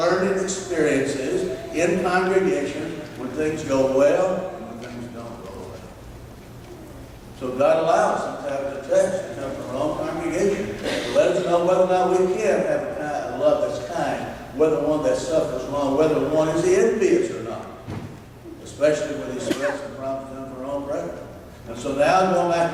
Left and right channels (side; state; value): both; identical; correlation 1.00